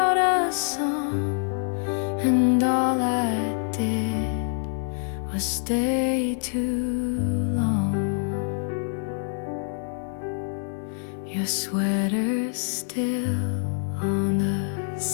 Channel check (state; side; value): silent; right; 61 dB below the other